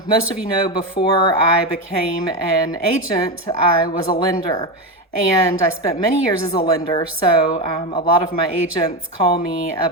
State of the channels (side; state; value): both; normal; correlation 0.15